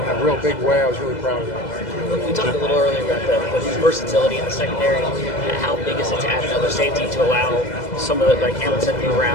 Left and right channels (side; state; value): right; late; 2.0 ms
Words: real big way. I was really proud of that. We talked a little earlier about the versatility in the secondary. How big is it to add another safety to allow some of the, like Hamilton to move